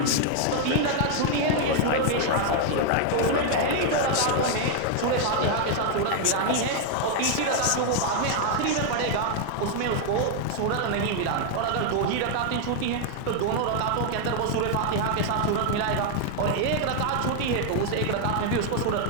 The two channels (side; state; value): both; different; correlation 0.00